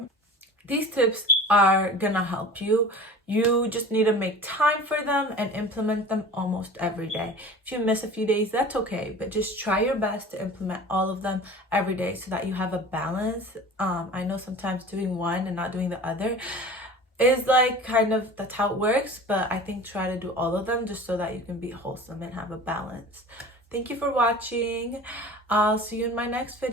These tips are gonna help you. You just need to make time for them and implement them almost every day. If you miss a few days, that's okay, but just try your best to implement all of them every day so that you have a balance. I know sometimes doing one and not doing the other is like kind of, that's how it works, but I think try to do all of them just so that you can be wholesome and have a balance. Thank you for watching. I'll see you in my next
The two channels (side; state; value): both; normal; correlation 0.39